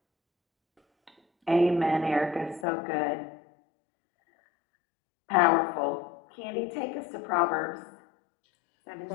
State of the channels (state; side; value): drops out; right; at 2.7 s